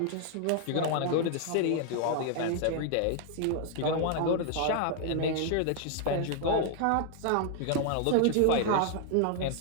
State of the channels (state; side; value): different; both; correlation 0.00